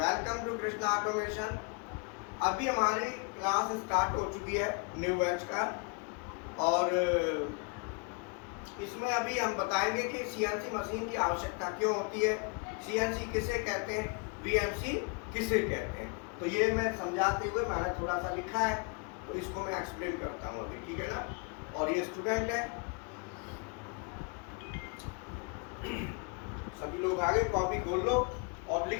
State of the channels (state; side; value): quieter; right; 33.0 dB